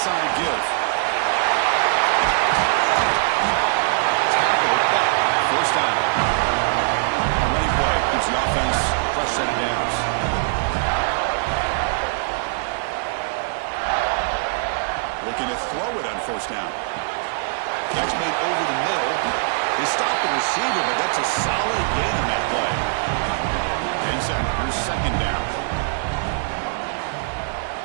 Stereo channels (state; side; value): silent; left; digital silence